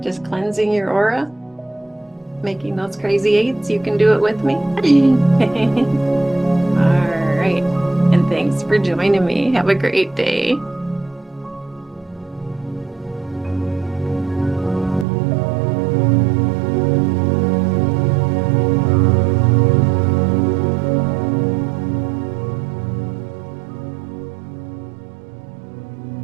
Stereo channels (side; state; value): left; drops out; at 15.1 s